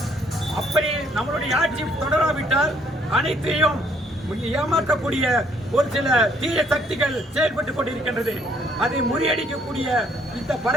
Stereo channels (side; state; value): both; normal; correlation 0.65